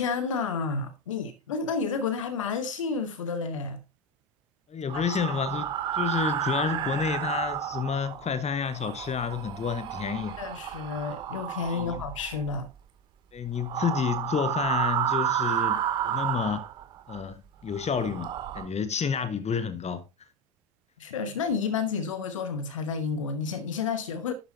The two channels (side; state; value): both; normal; correlation 0.17